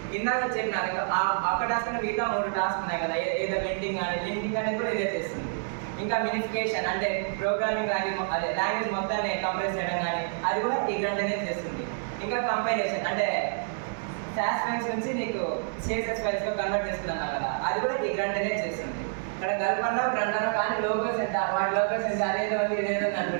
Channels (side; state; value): left; silent; digital silence